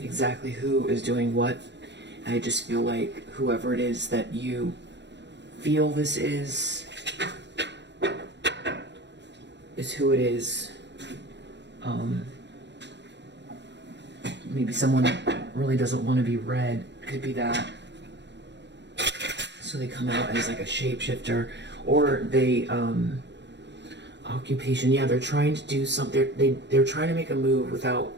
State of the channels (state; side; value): late; left; 0.51 ms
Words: exactly who is doing what. I just feel like whoever it is that you feel this is who it is. Maybe someone really doesn't want to be read. Could be that. So they come out as like a shapeshifter, or they occupation. Yeah, they're trying to do something. They're trying to make a move without